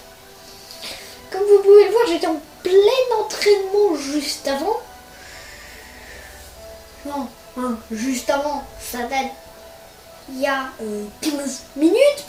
Comme vous pouvez le voir, j'étais en plein entraînement juste avant. Non, juste avant, ça date il y a 15 minutes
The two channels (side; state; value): both; identical; correlation 1.00